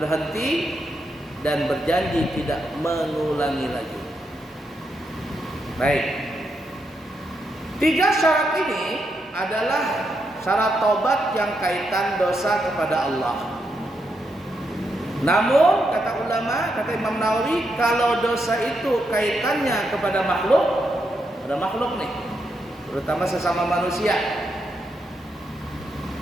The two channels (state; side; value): normal; both; correlation 0.81